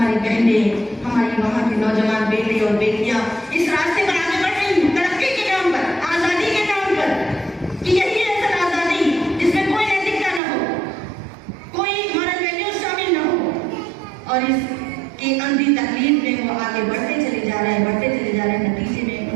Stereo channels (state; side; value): drops out; left; at 10.4 s